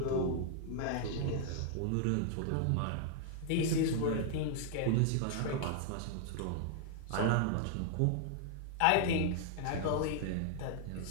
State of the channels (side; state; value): both; different; correlation -0.01